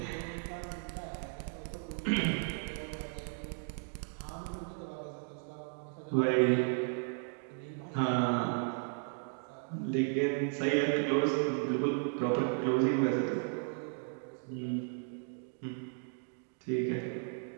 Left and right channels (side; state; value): left; silent; 54 dB below the other